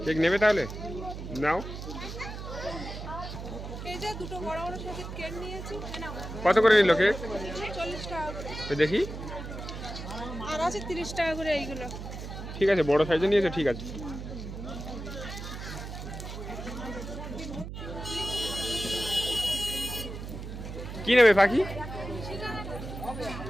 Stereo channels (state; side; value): noise; right; hum, 8 dB below the sound